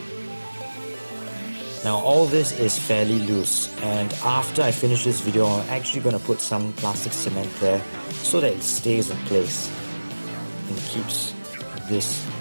Now all this is fairly loose, and after I finish this video I'm actually going to put some plastic cement there so that it stays in place and keeps this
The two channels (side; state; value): both; inverted; correlation -1.00